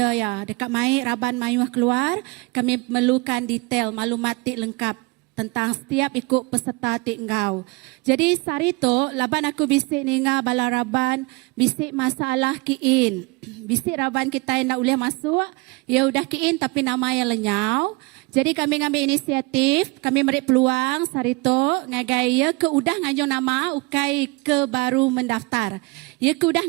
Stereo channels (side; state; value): left; quieter; 26.0 dB